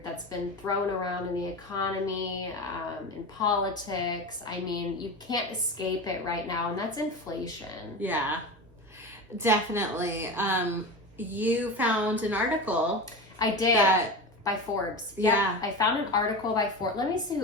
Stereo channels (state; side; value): normal; both; correlation 0.26